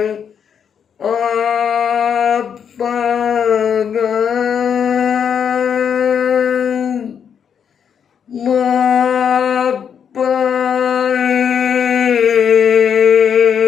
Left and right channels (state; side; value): quieter; right; 7.7 dB